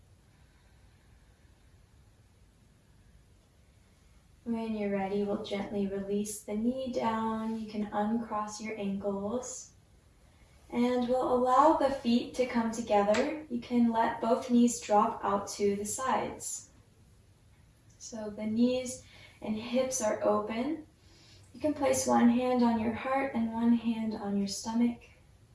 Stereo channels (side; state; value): both; identical; correlation 1.00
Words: When you're ready, we'll gently release the knee down. You can uncross your ankles. And we'll allow the feet to come together. You can let both knees drop out to the sides. So the knees and hips are open. You can place one hand on your heart and one hand on your stomach.